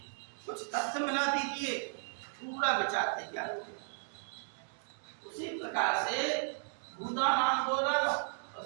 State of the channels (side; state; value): left; silent; 54 dB below the other